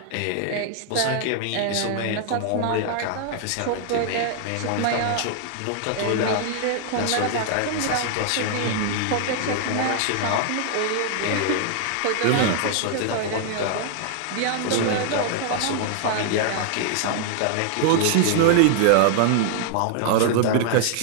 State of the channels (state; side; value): different; both; correlation 0.00